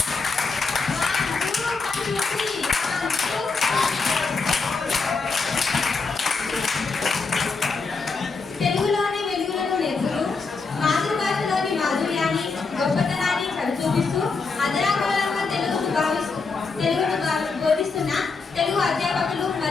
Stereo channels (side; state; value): right; quieter; 4.4 dB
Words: తెలుగులోని వెలుగులను నేర్పుతూ మాతృభాషలోని మాధుర్యాన్ని గొప్పతనాన్ని చూపిస్తూ అదరాకులంగా తెలుగును బోధిస్తున్న తెలుగు అధ్యాపకులు